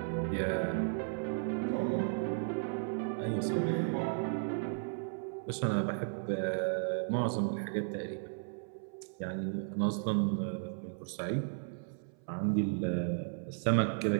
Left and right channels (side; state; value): left; silent; 55 dB below the other